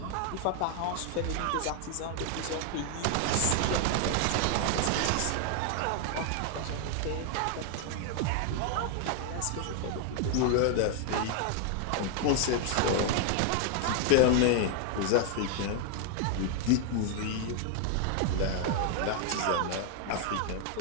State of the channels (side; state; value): both; different; correlation 0.00